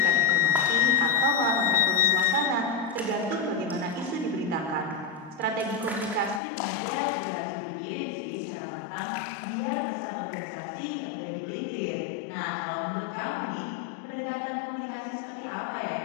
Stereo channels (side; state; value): right; drops out; at 6.4 s